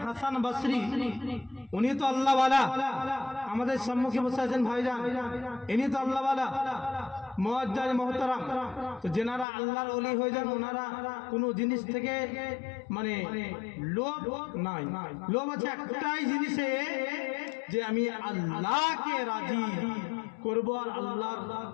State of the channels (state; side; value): drops out; right; at 9.5 s